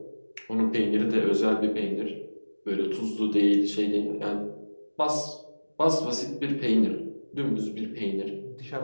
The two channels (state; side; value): inverted; both; correlation -1.00